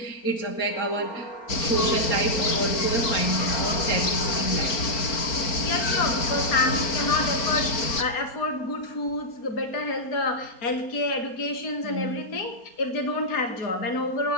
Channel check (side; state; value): right; late; 4.3 ms